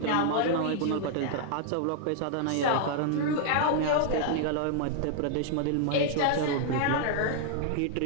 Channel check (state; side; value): different; both; correlation -0.01